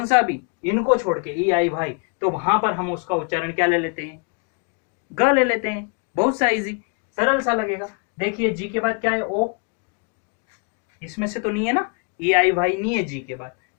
सा भी, इनको छोड़ के ई आई वाई, तो वहां पर हम उसका उच्चारण क्या ले लेते हैं? ग ले लेते हैं। बहुत सा इजी, सरल सा लगेगा। देखिए जी के बाद क्या है? ओ, इसमें से तो नहीं है ना, ई आई वाई नहीं है जी के बाद।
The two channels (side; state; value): right; quieter; 36.7 dB